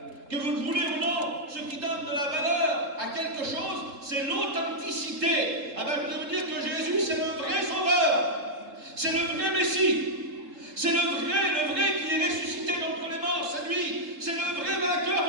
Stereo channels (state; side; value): late; left; 3.7 ms